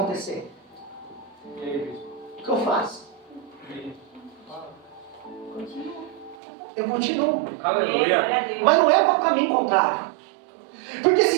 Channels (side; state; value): left; drops out; at 6.4 s